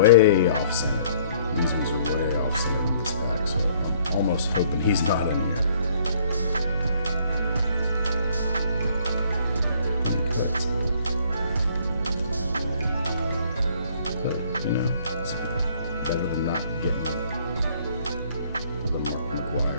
off center. These ones are way off center in this pack, so I'm almost hoping he's not in here. But, you know, it's better than not getting the Mark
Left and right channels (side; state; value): both; inverted; correlation -0.60